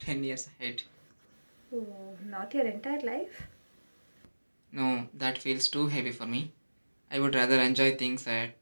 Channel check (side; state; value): both; inverted; correlation -1.00